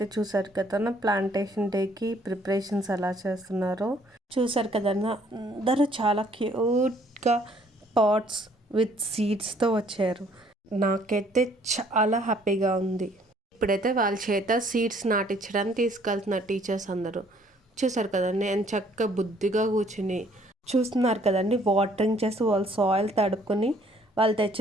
చూసారు కదా ప్లాంటేషన్ డేకి ప్రిపరేషన్స్ ఎలా చేస్తున్నారో చూసారు కదా. అందరూ చాలా క్యూట్గా పాట్స్ విత్ సీడ్స్తో వచ్చారు. నాకైతే చాలా హ్యాపీగా ఉంది. ఇప్పుడైతే వాళ్ళ చేత సీడ్స్ నాటించడానికి తీసుకెళ్తున్నారు టీచర్స్ అందరూ. చూసారు కదండి, నేను చక్కగా బుద్ధిగా కూర్చుని చూస్తున్నారు కదండి. వాటరింగ్ చేసి వాళ్ళు సాయిల్ తడుపుకొని వాళ్ళు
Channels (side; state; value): both; normal; correlation 0.62